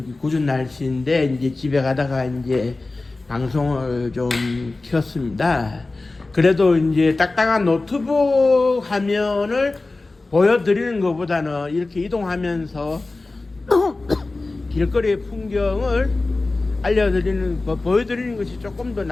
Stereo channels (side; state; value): right; quieter; 3.3 dB